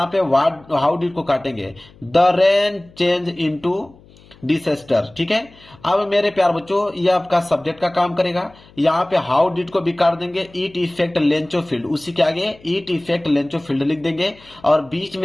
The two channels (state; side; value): noise; left; hum, 26 dB below the sound